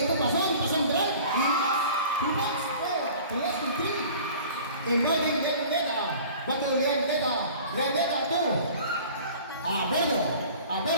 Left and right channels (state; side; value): inverted; both; correlation -0.45